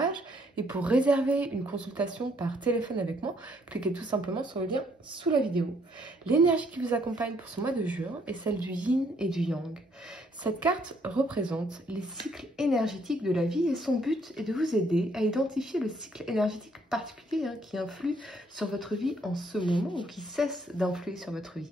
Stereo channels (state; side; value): normal; both; correlation 0.68